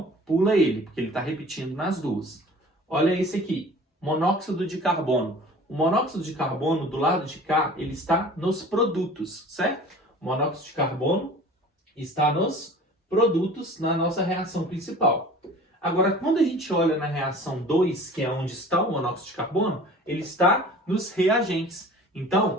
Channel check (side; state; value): both; normal; correlation 0.44